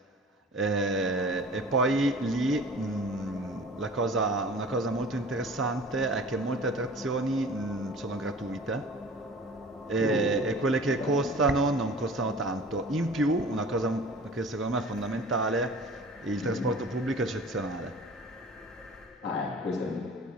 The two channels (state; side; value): normal; both; correlation 0.43